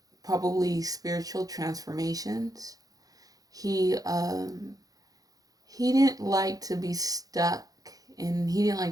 probably spiritual transformations. He didn't like to be stuck and he didn't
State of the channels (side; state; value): left; late; 0.18 ms